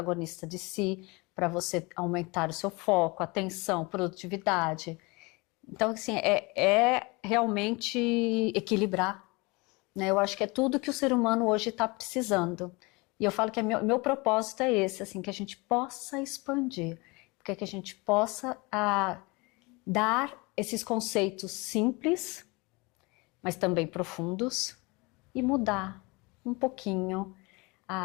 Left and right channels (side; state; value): right; quieter; 26.2 dB